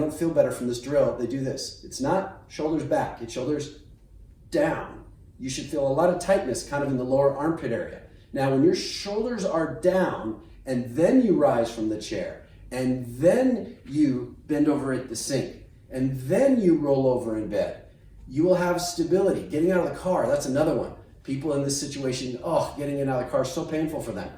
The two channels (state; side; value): identical; both; correlation 1.00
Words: feel better from this drill, they do this. It's not shoulders back, it's shoulders down. You should feel a lot of tightness kind of in the lower armpit area. Now, when your shoulders are down and then you rise from the chair and then you bend over at the sink and then you roll over in bed, you will have stability. Getting out of the car, that's another one. People in this situation, getting in and out of the car is so painful for them.